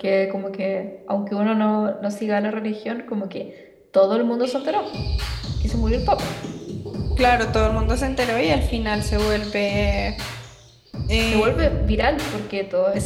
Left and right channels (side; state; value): both; identical; correlation 1.00